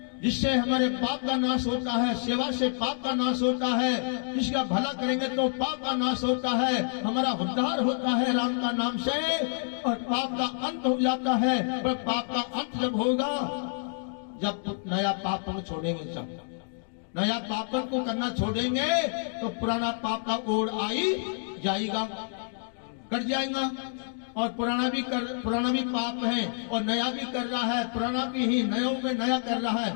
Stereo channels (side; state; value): right; silent; digital silence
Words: जिससे हमारे पाप का नाश होता है, सेवा से पाप का नाश होता है, जिसका भला करेंगे तो पाप का नाश होता है, हमारा उद्धार होता है राम का नाम से, और पाप का अंत हो जाता है। पर पाप का अंत जब होगा, जब नया पापन छोड़ेंगे, जब नया पापन को करना छोड़ेंगे तो पुराना पाप का ओढ़ आई जाएगा, कट जाएगा। और पुराना भी पाप है और नया भी कर रहा है, पुराना भी ही नयों में नया कर रहा